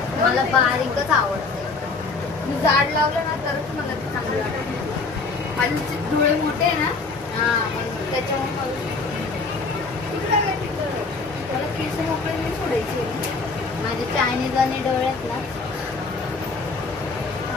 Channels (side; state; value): right; quieter; 4.1 dB